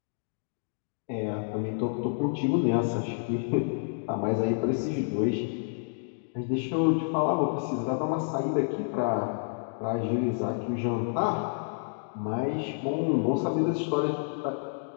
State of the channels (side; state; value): right; silent; digital silence